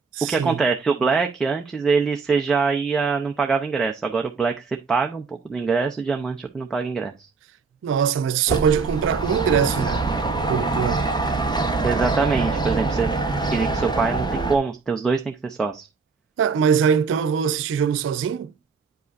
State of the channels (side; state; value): left; quieter; 4.8 dB